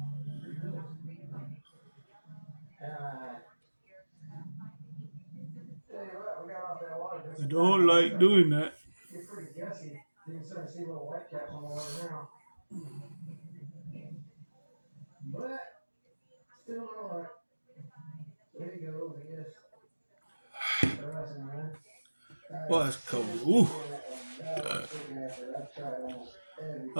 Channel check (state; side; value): inverted; both; correlation -1.00